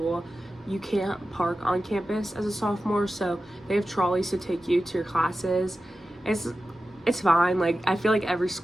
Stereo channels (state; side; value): normal; both; correlation 0.93